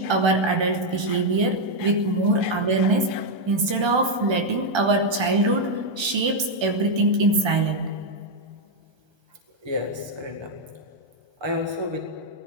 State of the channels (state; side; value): late; left; 1.3 ms